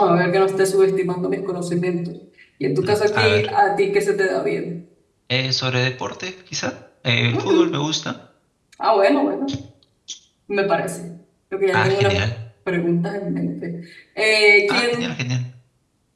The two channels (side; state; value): both; identical; correlation 1.00